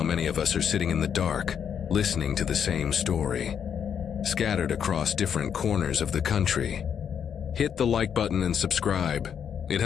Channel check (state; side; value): quieter; right; 8.0 dB